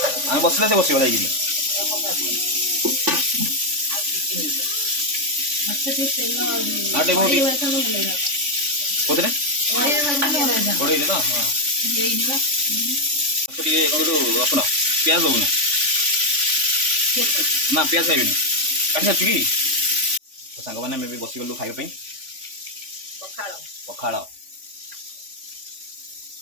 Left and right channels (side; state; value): left; late; 3.5 ms